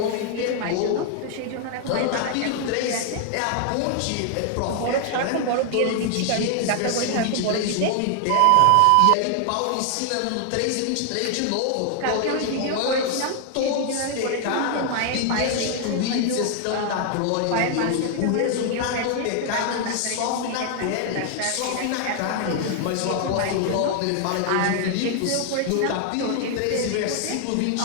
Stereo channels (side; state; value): both; different; correlation 0.00